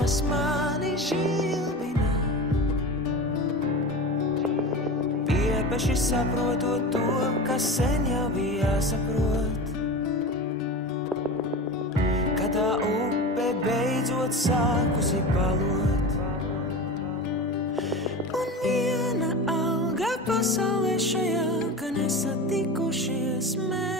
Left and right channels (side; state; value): both; normal; correlation 0.29